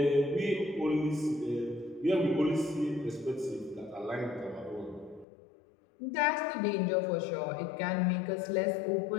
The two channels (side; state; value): right; drops out; at 5.2 s